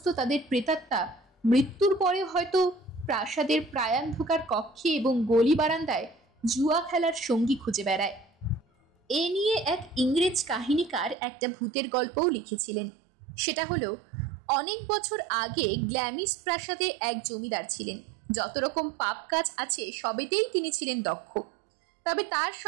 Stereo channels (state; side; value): drops out; left; at 11.2 s